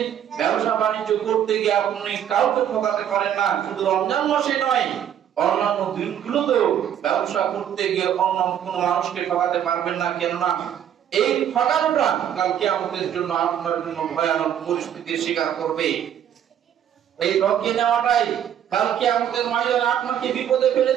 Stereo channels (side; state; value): left; quieter; 9.8 dB